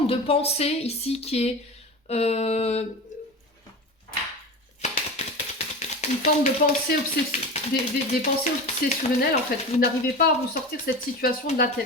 de pensée ici qui est une forme de pensée des pensées obsessionnelles en fait. Vous n'arrivez pas à vous sortir cette situation de la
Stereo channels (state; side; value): normal; both; correlation 0.29